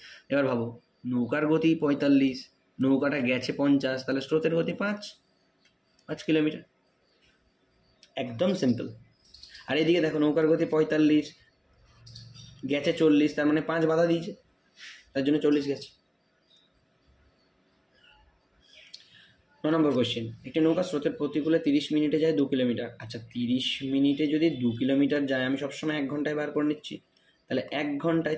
এবার ভাবো, নৌকার গতি 45, নৌকাটা গেছে 50, তাহলে স্রোতের গতি 5 কিলোমিটার। একদম সিম্পল। আর এদিকে দেখো, নৌকার গতি 45, গেছে 40, তার মানে 5 বাধা দিয়েছে, তার জন্য 40 গেছে। 9 নম্বর কোয়েশ্চেন, একটি নৌকা স্রোতের প্রতিকূলে 30 মিনিটে যায় 2 কিলোমিটার। আচ্ছা, 30 মিনিটে যদি 2 কিলোমিটার যায়, আমি সবসময় 1 ঘন্টায় বার করে নিচ্ছি, তাহলে 1 ঘন্টায়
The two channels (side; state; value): both; identical; correlation 1.00